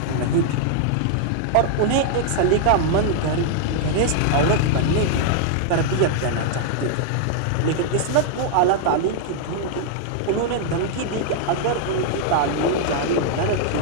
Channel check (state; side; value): different; both; correlation 0.00